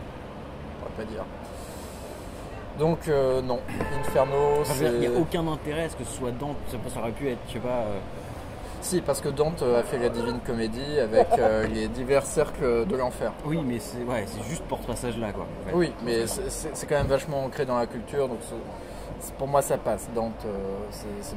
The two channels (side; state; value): both; identical; correlation 1.00